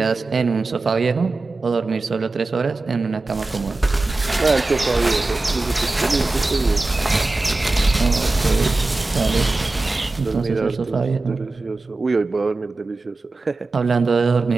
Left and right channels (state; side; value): quieter; left; 3.3 dB